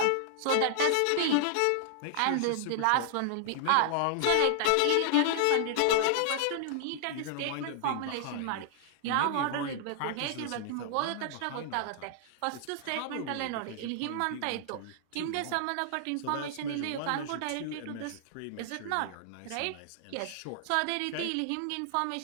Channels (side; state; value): both; different; correlation -0.01